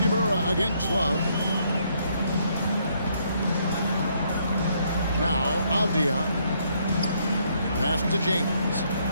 against Love. Now, Avdia. Pass to James.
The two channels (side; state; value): both; inverted; correlation -0.71